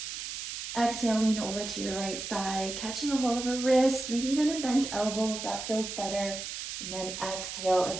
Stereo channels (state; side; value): noise; right; hiss, 6 dB below the sound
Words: Exhale, lean over to your right side, catching a hold of a wrist, maybe even a bent elbow if that feels better. And then exhale